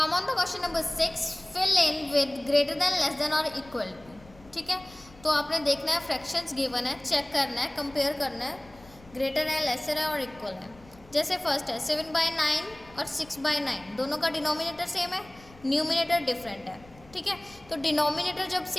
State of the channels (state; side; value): noise; left; rumble, 24 dB below the sound